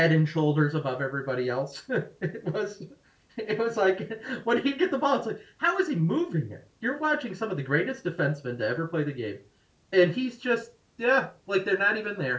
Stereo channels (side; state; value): both; identical; correlation 1.00